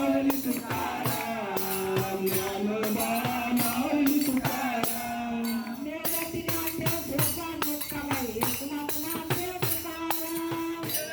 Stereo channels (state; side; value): identical; both; correlation 1.00